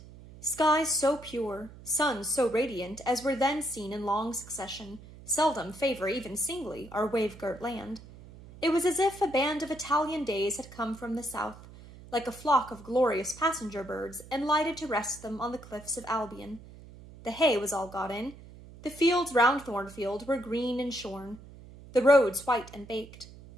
Skies so pure, suns so radiant as were then seen in long succession, seldom favor even singly our wave-girt land. It was as if a band of Italian days had come from the south, like a flock of glorious passenger birds, and lighted to rest them on the cliffs of Albion. The hay was all got in. The fields round Thornfield were green and shorn, the roads white and baked.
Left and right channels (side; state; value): right; noise; hum, 18 dB below the sound